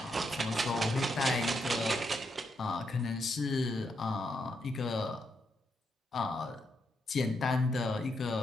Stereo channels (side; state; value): both; normal; correlation 0.80